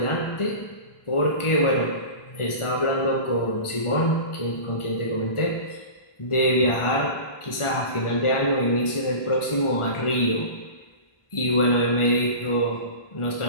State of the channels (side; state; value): right; late; 1.4 ms